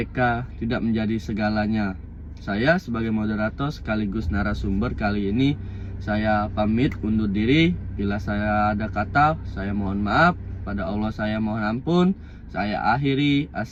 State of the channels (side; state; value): both; identical; correlation 1.00